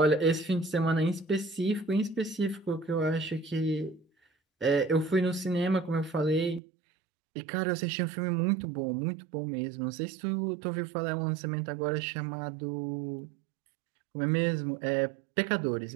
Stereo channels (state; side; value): drops out; left; at 6.6 s